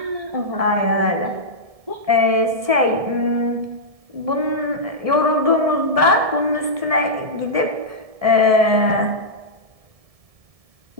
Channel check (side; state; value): left; late; 1.7 ms